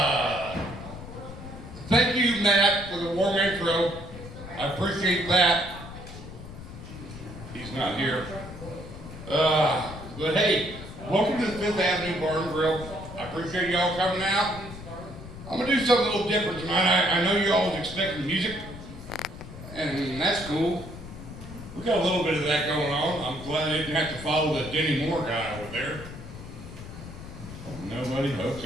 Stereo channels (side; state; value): left; noise; rumble, 13 dB below the sound